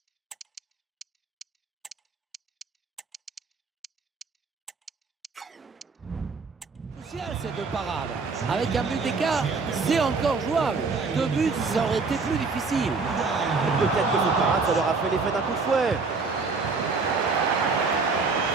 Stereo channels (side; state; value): left; quieter; 4.4 dB